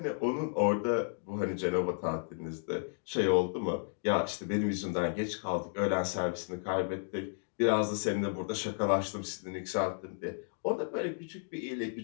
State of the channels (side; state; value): right; silent; digital silence